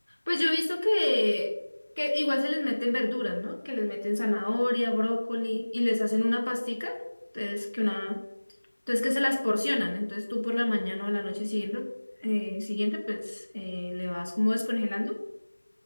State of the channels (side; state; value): both; inverted; correlation -1.00